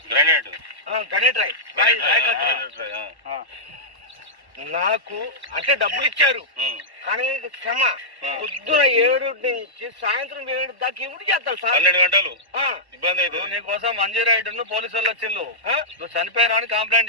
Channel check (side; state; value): left; late; 1.1 ms